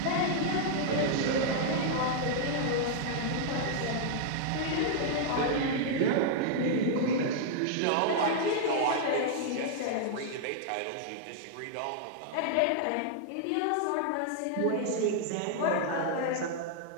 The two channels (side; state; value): both; different; correlation -0.01